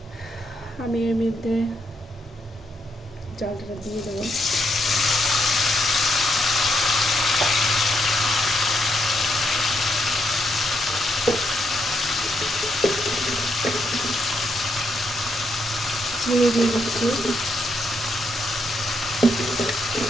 আমি এর মধ্যে চালটা দিয়ে দেবো। চিনি দিয়ে দিচ্ছি।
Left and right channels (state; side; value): normal; both; correlation 0.78